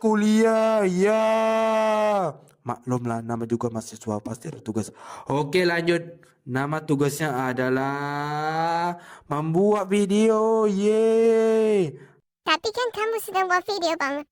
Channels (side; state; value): both; identical; correlation 1.00